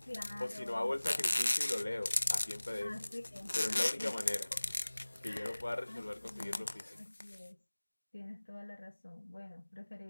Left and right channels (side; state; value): both; inverted; correlation -1.00